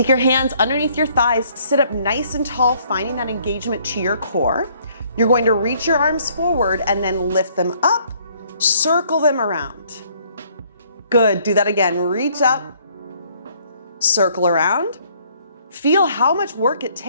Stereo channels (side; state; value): both; inverted; correlation -0.63